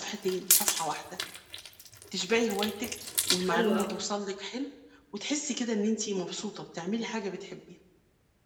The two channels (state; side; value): identical; both; correlation 1.00